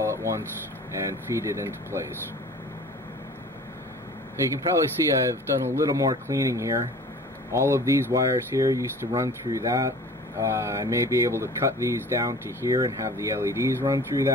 at once and feed it into place. You can probably see I've done a little more cleaning here. All of these wires here used to run through that. I may be able to cut these down to here and have the LEDs run through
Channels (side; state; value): both; normal; correlation 0.44